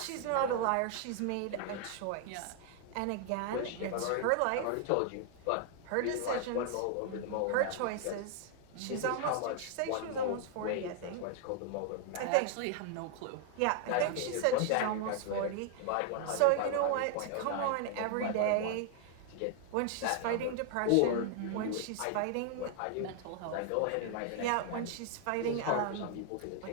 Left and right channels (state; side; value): different; both; correlation 0.00